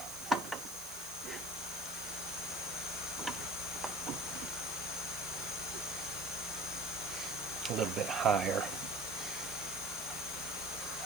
A little bit higher.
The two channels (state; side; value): noise; right; hiss, 9 dB below the sound